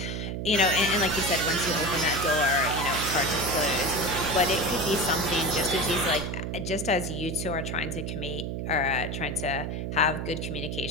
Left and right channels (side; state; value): right; noise; hum, 4 dB below the sound